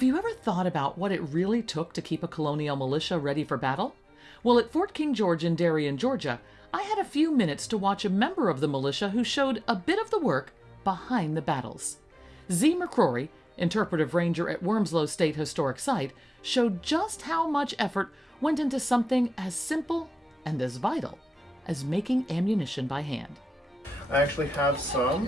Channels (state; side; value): normal; both; correlation 0.96